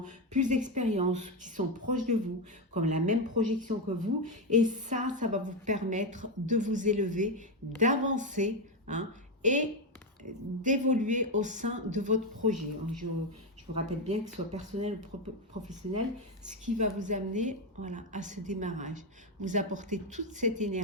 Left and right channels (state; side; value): normal; both; correlation 0.09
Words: plus d'expérience, qui sont proches de vous, comme la même projection que vous. Et ça va vous permettre de vous élever, d'avancer, hein, et d'évoluer au sein de votre projet. Je vous rappelle bien que ce soit personnel ou professionnel, ce qui va vous amener, voilà, à ce démarrage. Vous apportez toute cette